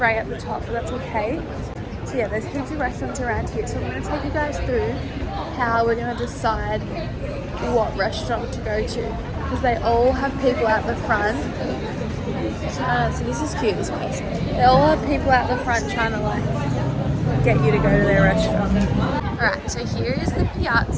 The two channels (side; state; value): both; identical; correlation 1.00